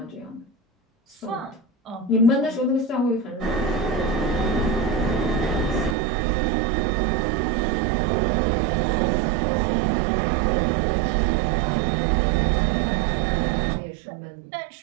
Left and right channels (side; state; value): left; drops out; at 6.0 s